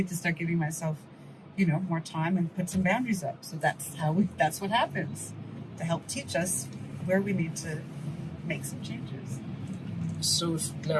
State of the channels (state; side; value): identical; both; correlation 1.00